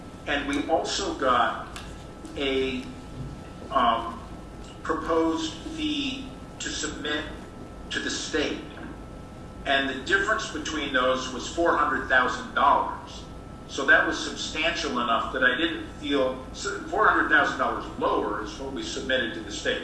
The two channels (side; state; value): both; identical; correlation 1.00